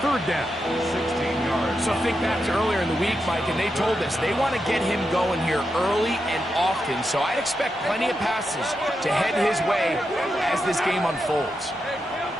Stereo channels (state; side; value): normal; both; correlation 0.86